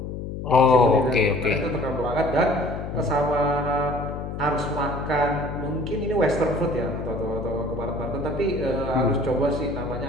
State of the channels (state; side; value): noise; left; hum, 7 dB below the sound